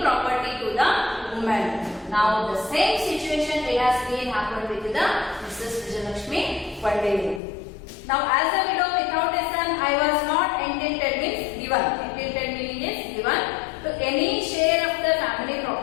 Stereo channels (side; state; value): right; drops out; at 7.4 s